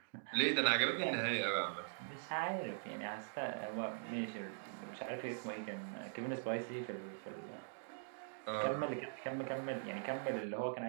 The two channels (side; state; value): left; silent; digital silence